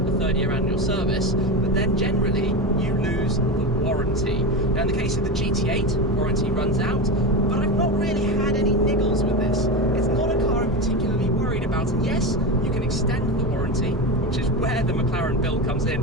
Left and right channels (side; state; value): both; normal; correlation 0.20